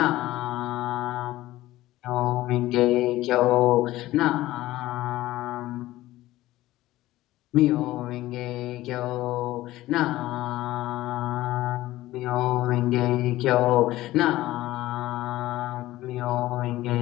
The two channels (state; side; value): quieter; right; 16.4 dB